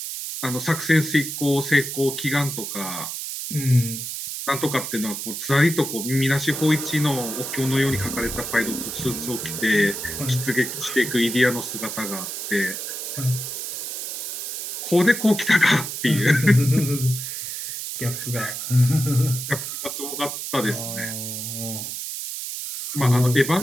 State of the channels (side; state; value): right; noise; hiss, 5 dB below the sound